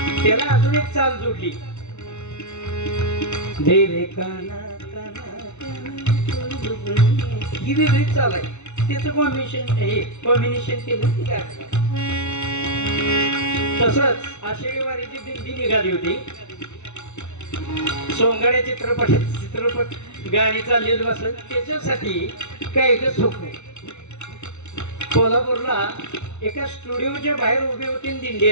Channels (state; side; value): late; right; 0.82 ms